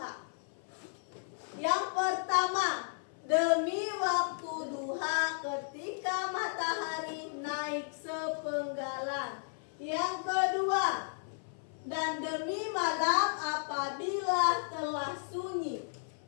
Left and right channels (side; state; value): right; silent; 55 dB below the other